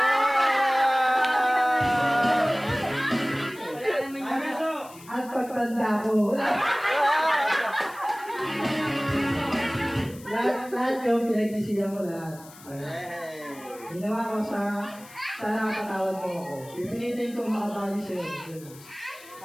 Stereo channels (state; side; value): noise; left; hiss, 20 dB below the sound